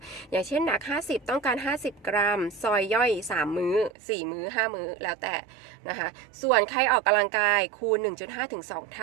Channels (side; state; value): left; drops out; at 3.9 s